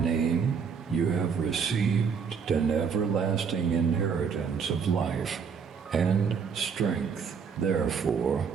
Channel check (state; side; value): quieter; left; 6.3 dB